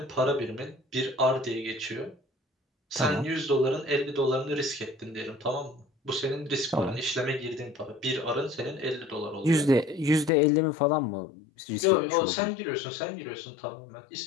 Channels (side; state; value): right; drops out; at 10.3 s